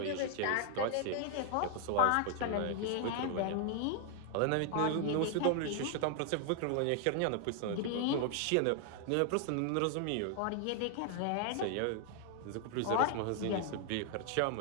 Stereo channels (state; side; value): different; both; correlation 0.00